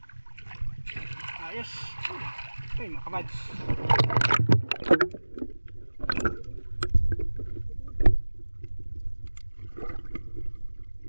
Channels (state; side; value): inverted; both; correlation -1.00